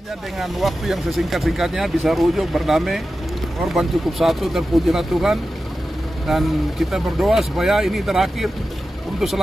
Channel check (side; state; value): both; normal; correlation 0.93